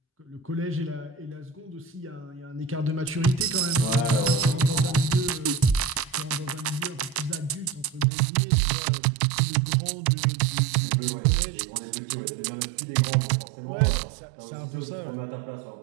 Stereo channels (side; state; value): left; drops out; at 8.1 s